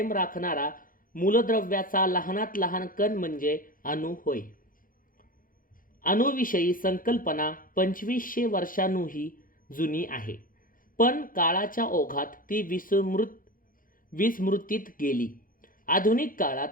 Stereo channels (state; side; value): late; right; 0.40 ms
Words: राखणारा मूलद्रव्याचा लहानात लहान कण म्हणजे अणू होय. अणुविषयी संकल्पना 2500 वर्षांहूनही जुनी आहे, पण काळाच्या ओघात ती विस्मृतीत गेली. आधुनिक